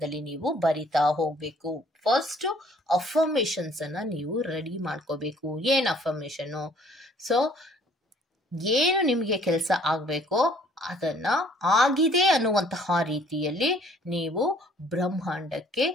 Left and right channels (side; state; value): both; normal; correlation 0.58